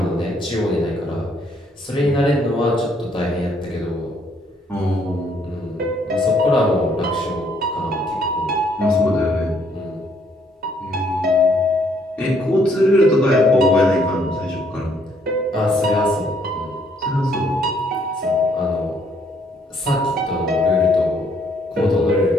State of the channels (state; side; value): normal; both; correlation 0.67